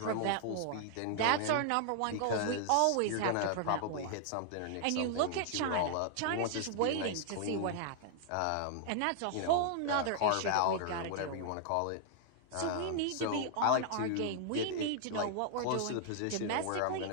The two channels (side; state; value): both; different; correlation 0.00